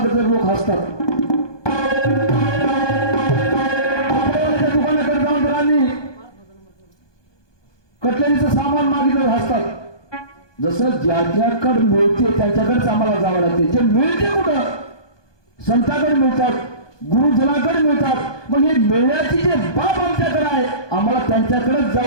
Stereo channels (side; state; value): right; late; 1.2 ms